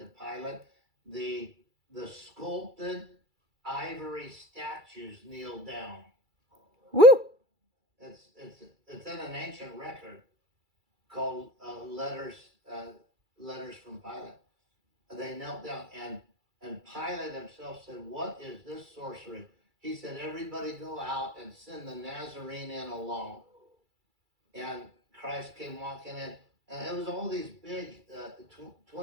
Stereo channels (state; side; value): late; left; 2.3 ms